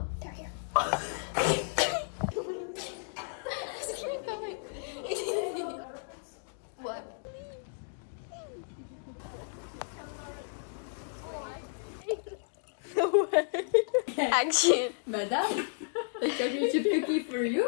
here. What? No way. Action. Madam, a chocolate chip cookie for you.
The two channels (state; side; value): silent; right; digital silence